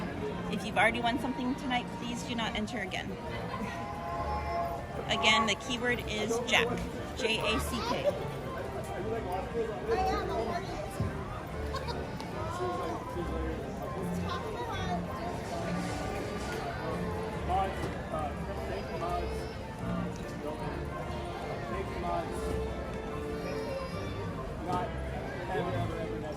If you've already won something tonight, please do not enter again. Again, the keyword is Jack. J-A-C-K. Not ever,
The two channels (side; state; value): both; identical; correlation 1.00